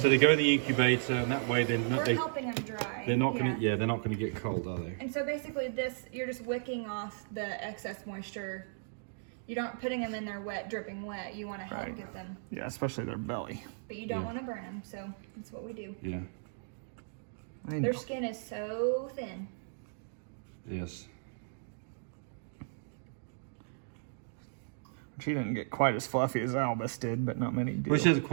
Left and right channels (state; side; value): silent; left; digital silence